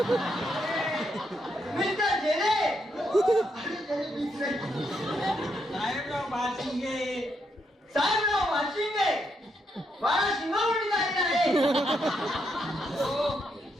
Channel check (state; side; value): normal; both; correlation 0.79